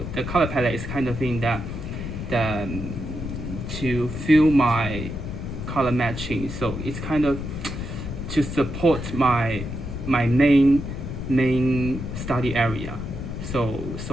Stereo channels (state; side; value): noise; left; rumble, 6 dB below the sound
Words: the color palette is kind of thing that to feel my color matching. So it's kind of to support my main study area. So